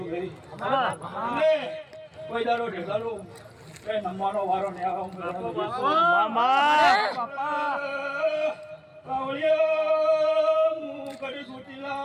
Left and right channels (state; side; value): identical; both; correlation 1.00